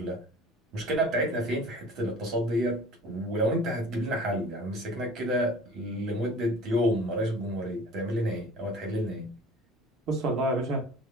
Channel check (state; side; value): normal; both; correlation 0.44